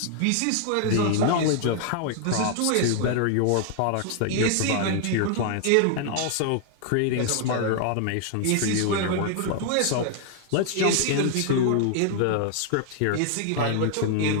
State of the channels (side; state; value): both; different; correlation 0.00